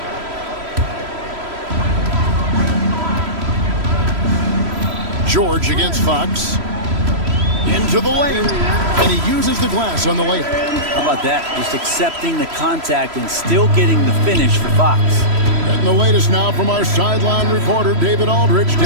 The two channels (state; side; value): late; left; 3.0 ms